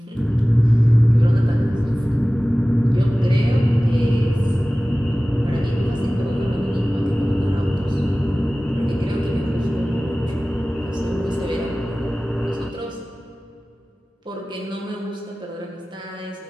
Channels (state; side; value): normal; both; correlation 0.97